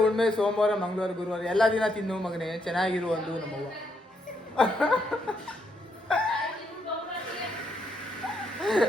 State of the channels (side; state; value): both; normal; correlation 0.76